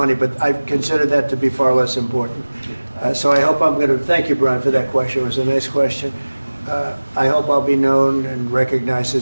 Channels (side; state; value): both; inverted; correlation -1.00